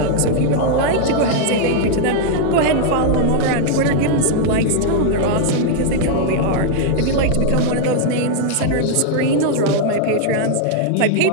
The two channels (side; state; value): both; different; correlation 0.00